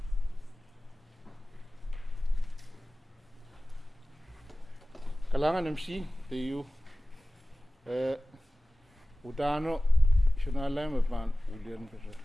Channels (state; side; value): normal; both; correlation 0.97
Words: Kalangan MC tayo udano sinala mapan ulian kasi